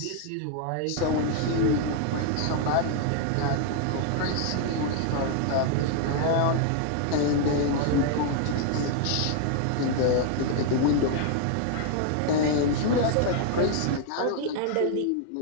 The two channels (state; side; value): different; both; correlation 0.00